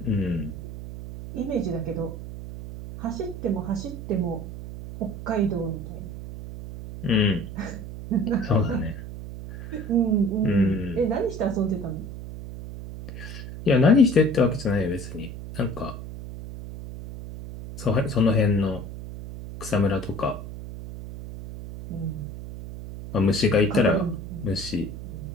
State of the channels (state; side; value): noise; right; hum, 10 dB below the sound